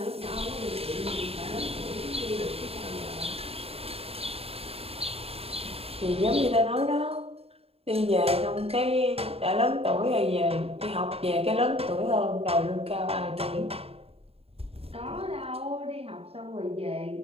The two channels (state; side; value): late; left; 0.29 ms